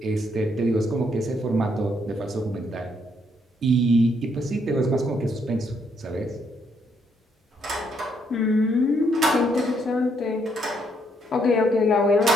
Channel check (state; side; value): normal; both; correlation 0.72